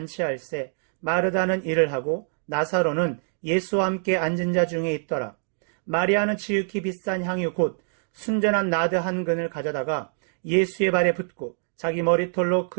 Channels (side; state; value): left; silent; digital silence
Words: 마르다는 일을 하고 나사로는 예수와 함께 앉은 자 중에 있더라. 마리아는 지극히 비싼 향유 곧 순전한 나드 한 근을 가져다가 예수의 발에 붓고 자기 머리털로